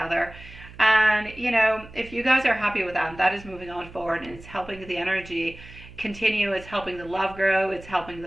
And, if you guys are happy with that, that is moving on forward, and it's helping the energy continue. It's helping the love grow. It's helping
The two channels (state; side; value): noise; right; hum, 18 dB below the sound